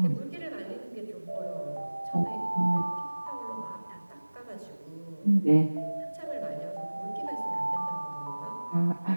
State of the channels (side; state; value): both; inverted; correlation -1.00